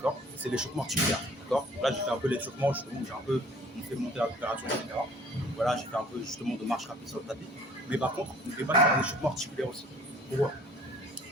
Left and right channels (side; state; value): both; normal; correlation 0.52